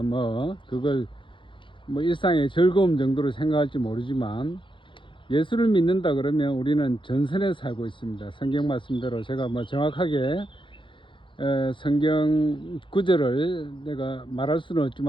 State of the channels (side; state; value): right; late; 0.24 ms